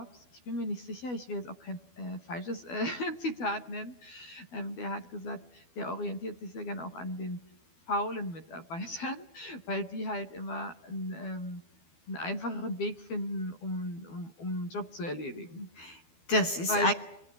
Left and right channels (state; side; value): late; right; 12 ms